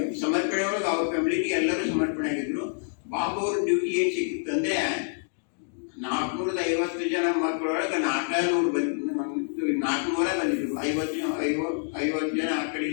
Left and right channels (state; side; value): silent; right; digital silence